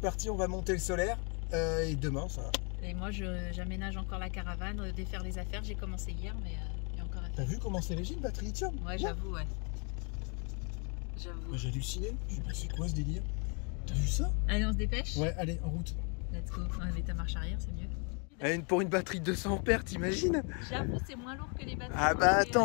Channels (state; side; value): quieter; right; 35.6 dB